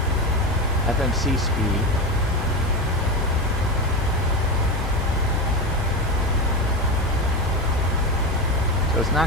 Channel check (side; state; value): both; normal; correlation 0.18